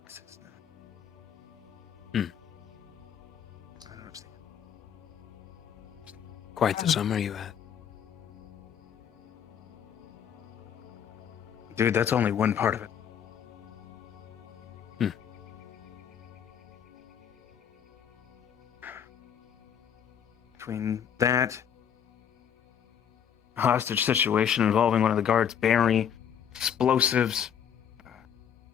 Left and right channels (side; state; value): right; quieter; 8.5 dB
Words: Quite the summer you had. Dude, that's only one part of it. Between that hostage situation involving one of the guards, Barry, explosives,